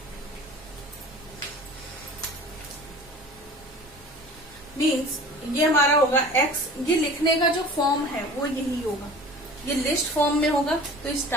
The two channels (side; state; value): both; normal; correlation 0.42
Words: मीन्स ये हमारा होगा एक्स, ये लिखने का जो फॉर्म है वो यही होगा, ये लिस्ट फॉर्म में होगा तो इस